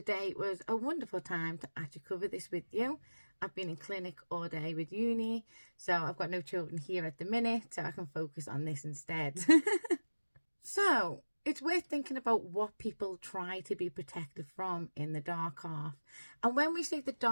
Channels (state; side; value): inverted; both; correlation -1.00